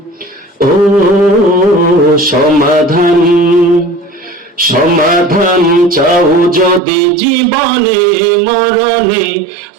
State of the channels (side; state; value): left; drops out; at 6.8 s